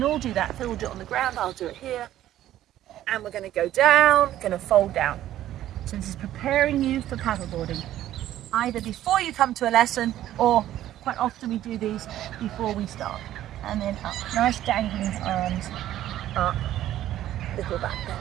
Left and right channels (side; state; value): left; quieter; 12.9 dB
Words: all do that. Phil will do it on the ground, I'll do it here. and we're going to go down, going to fold down. So this is preparing you for paddleboarding, either before you come to a lesson, or quite often we do these before we start. And then up, nice dangling arms, up, little back bend.